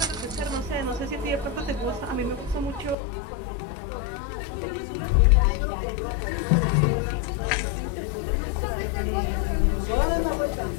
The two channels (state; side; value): drops out; right; at 3.0 s